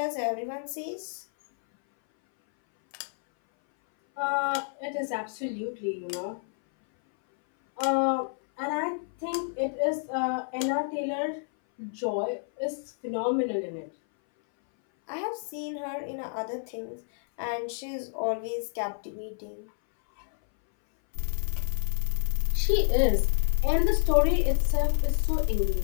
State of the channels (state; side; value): silent; right; 58 dB below the other